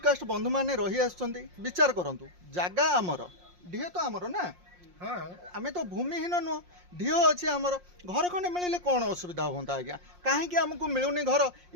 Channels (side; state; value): left; late; 5.6 ms